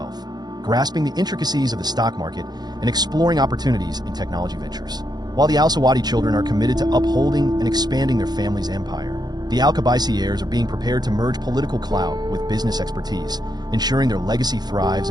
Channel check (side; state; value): left; late; 0.20 ms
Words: grasping the intricacies of the stock market, and exploring opportunities in technology ventures. While the Al Sawadi children are committed to upholding and expanding their family's empire, The Al-Qabaisi heirs are being prepared to merge political clout with business expertise, ensuring their legacy thrives